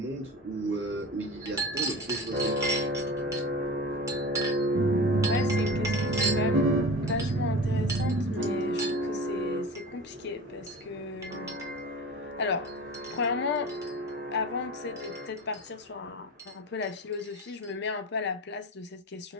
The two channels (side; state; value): both; normal; correlation 0.33